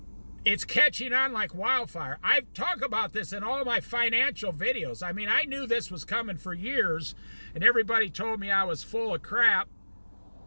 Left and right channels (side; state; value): both; inverted; correlation -1.00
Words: it's catching on like wildfire. I've talked about this in all my financial videos. I mean, I knew this was coming for years, and everybody told me I was full of crap.